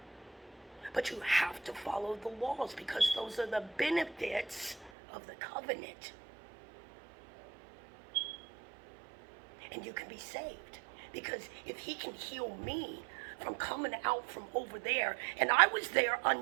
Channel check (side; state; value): left; drops out; at 4.9 s